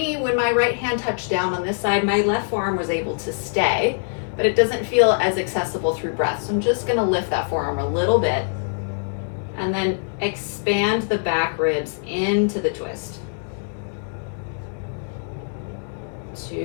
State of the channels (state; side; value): silent; right; 63 dB below the other